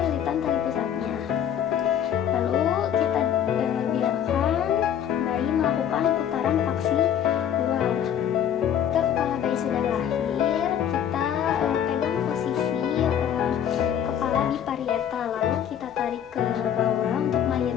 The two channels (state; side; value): quieter; right; 9.5 dB